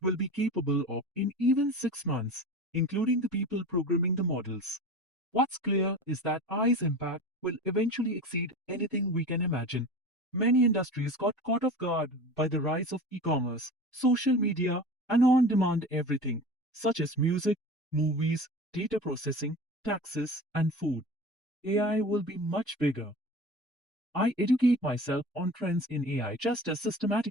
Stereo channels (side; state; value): both; normal; correlation 0.34